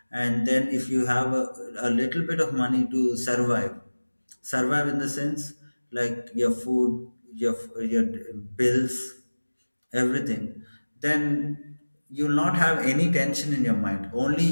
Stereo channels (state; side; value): inverted; both; correlation -1.00